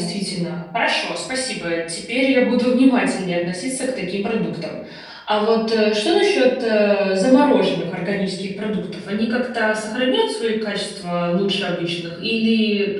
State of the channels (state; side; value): identical; both; correlation 1.00